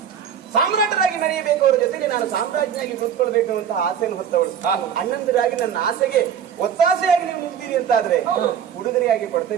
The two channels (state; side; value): quieter; left; 8.4 dB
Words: ಸಾಮ್ರಾಟರಾಗಿ ಮೆರೆಯಬೇಕು. ಅವರ ಜೊತೆಗೆ ನಾನು ಸಾಮ್ರಾಜ್ಞಿಯಾಗಿ ಕೂತ್ಕೊಳ್ಬೇಕು ಅಂತ ಆಸೆಯನ್ನು ಹೊತ್ತವಳು. ಅಣ್ಣಂದಿರಾಗಿ ನನ್ನ ಆಸೆಗೆ ಒತ್ತಾಸೆಯಾಗಿ ನೀವು ನಿಲ್ತೀರಿ ಅಂತ ಆದ್ರೆ ಉಡುಗೊರೆಯಾಗಿ